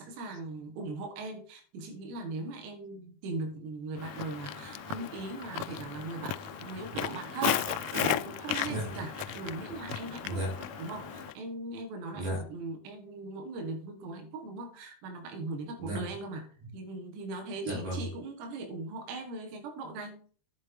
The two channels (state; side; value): late; left; 20 ms